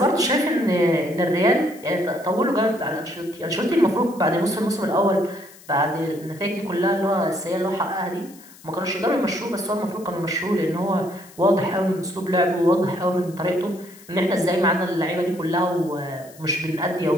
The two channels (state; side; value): noise; left; hiss, 22 dB below the sound